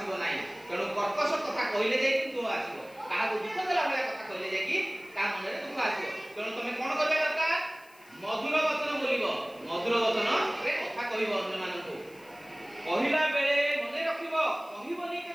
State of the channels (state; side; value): noise; left; hiss, 26 dB below the sound